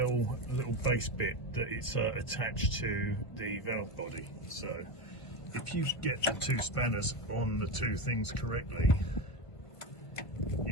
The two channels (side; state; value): right; late; 1.5 ms